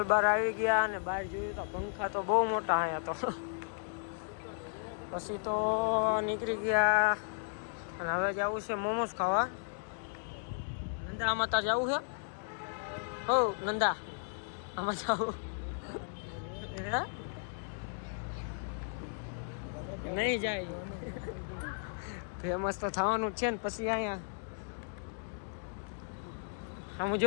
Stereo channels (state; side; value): silent; right; digital silence